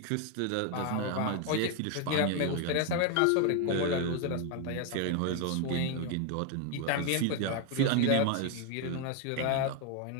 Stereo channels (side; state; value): both; different; correlation 0.01